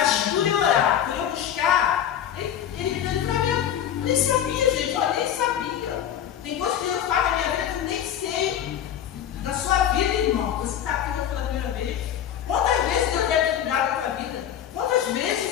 por eu orar, por eu buscar, ele me deu livramento. Eu nem sabia, gente, eu nem sabia. Tem coisas que Deus faz na minha vida que eu nem sei. Na sua vida, irmão, você está aqui hoje pela primeira vez. Quantas vezes Deus deve ter cuidado da sua vida? Quantas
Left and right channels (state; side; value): quieter; right; 10.0 dB